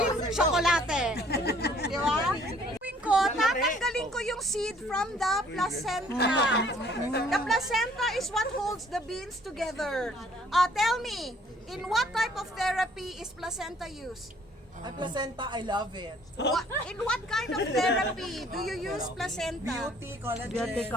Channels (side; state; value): both; normal; correlation 0.59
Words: tsokolate. Di ba? Gawin ko, tatanggalin ko yung seed from the placenta. The placenta is what holds the beans together. Tell me, in what type of therapy is placenta used? Ang placenta, I love it. In what kind of therapy do you use placenta? Beauty, collagen.